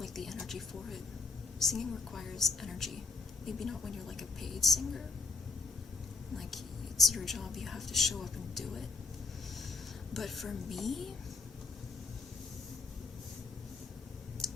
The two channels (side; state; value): right; quieter; 4.2 dB